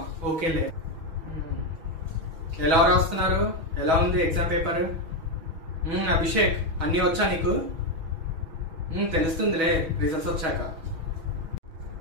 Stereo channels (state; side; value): late; left; 6.2 ms